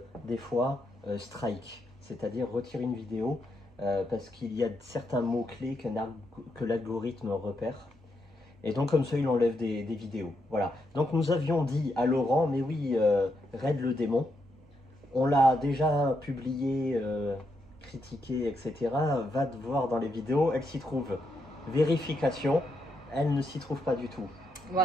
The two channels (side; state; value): both; normal; correlation 0.81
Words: des fois, strike, c'est-à-dire retire une vidéo parce qu'il y a certains mots-clés que l'algorithme repère. Et donc comme ça, il enlève des vidéos. Voilà. Donc nous avions dit à Laurent, mais oui, Raid le démon, on l'a déjà publié, critiqué, etc. Va te voir dans les vidéos, elle s'y trouve. Vérification, elle ne s'y trouve pas du tout.